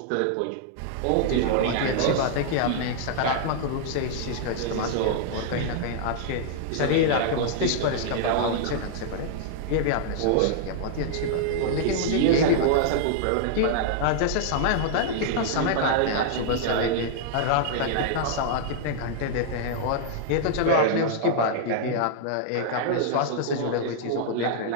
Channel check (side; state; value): both; different; correlation -0.01